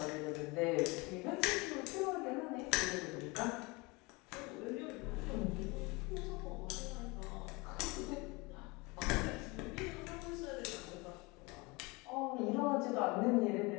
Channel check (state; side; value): quieter; right; 25.8 dB